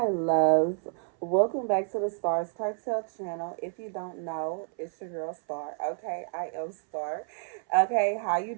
loves. Welcome back to the Starscartel channel. If you don't know, it's your girl Star. Okay, I am Star. Okay, how you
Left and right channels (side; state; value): left; silent; 58 dB below the other